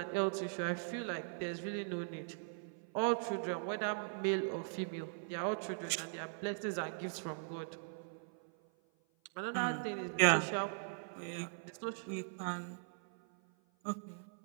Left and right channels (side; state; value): left; silent; 51 dB below the other